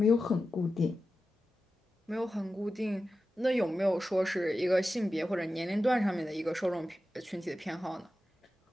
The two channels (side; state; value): both; normal; correlation 0.92